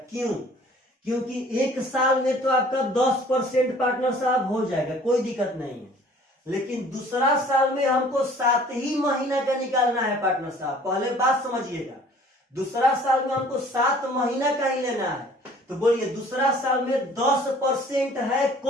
क्यों? क्योंकि 1 साल में तो आपका 10% पार्टनर साहब हो जाएगा, कोई दिक्कत नहीं है, लेकिन दूसरा साल में हमको 7 ही महीना का निकालना है पार्टनर साहब। पहले बात समझिएगा, दूसरा साल में हमको 7 महीना का ही लेना है, तो बोलिए दूसरा साल में 10% है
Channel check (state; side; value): normal; both; correlation 0.52